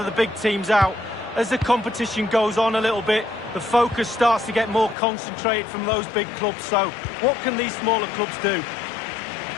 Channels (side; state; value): right; drops out; at 5.0 s